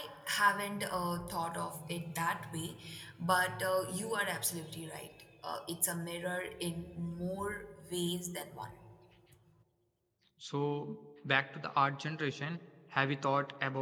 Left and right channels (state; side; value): identical; both; correlation 1.00